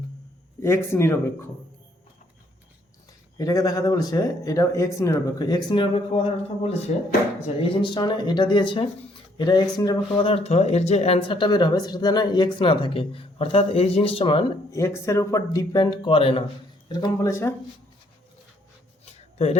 এক্স নিরপেক্ষ। এটাকে দেখাতে বলেছে এটা এক্স নিরপেক্ষ। এক্স নিরপেক্ষ কথার অর্থ বলেছে, আচ্ছা এই জিনিসটা মানে এটা দিয়েছে, এটা এক্স নিরপেক্ষ কথার অর্থ এর যে অ্যান্সারটা বের হবে সেটা যেন এক্স না থাকে, অর্থাৎ এই জিনিসটা মান এক্সের উপর ডিপেন্ড করে না, এরকম বলেছে। তো এটা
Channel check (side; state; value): both; normal; correlation 0.67